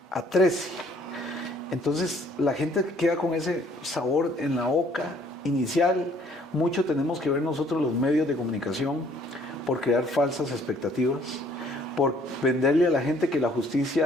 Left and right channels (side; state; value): both; normal; correlation 0.61